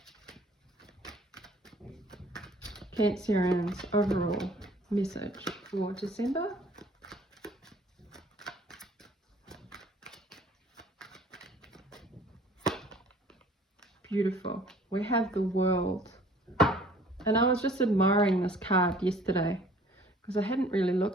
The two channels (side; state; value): both; normal; correlation 0.53